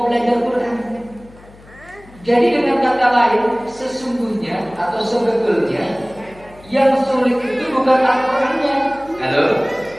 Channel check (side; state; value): left; noise; hum, 23 dB below the sound